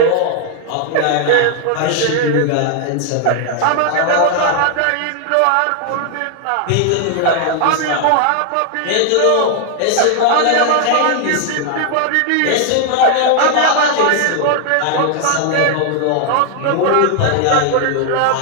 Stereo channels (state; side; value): different; both; correlation 0.00